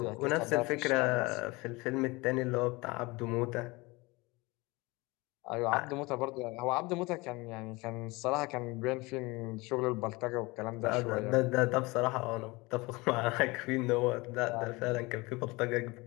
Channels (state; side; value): quieter; right; 24.0 dB